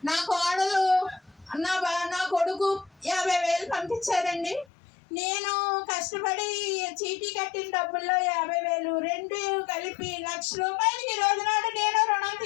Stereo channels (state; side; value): drops out; right; at 4.7 s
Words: నా కోడలు నా కొడుకు 50,000 పంపించారండి. నేను కష్టపడి చీటీ కట్టిన డబ్బుల్లో 50,000 రెండు కలిపి ₹1,00,000 ఈ రోజు నాడు నేను రుణం